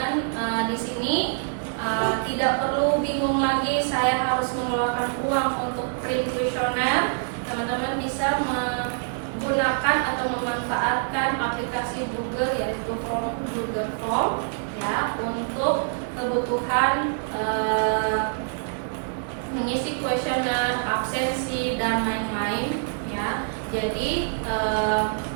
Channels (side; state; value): left; silent; digital silence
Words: di sini tidak perlu bingung lagi saya harus mengeluarkan uang untuk print kuesioner. Teman-teman bisa menggunakan atau memanfaatkan aplikasi Google yaitu Google Form ya, untuk kebutuhan mengisi kuesioner, absensi dan lain-lain ya. Jadi